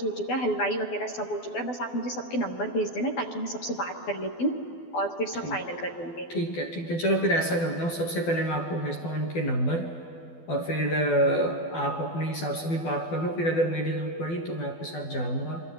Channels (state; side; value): late; right; 12 ms